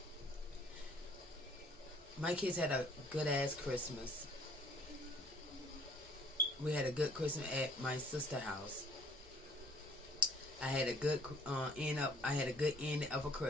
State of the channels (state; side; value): normal; both; correlation 0.57